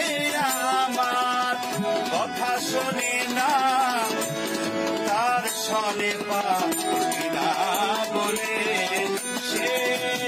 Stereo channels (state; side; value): identical; both; correlation 1.00